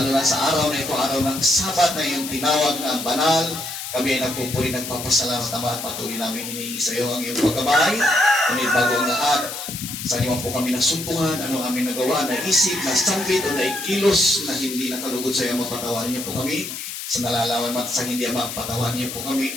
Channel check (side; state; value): left; noise; hiss, 7 dB below the sound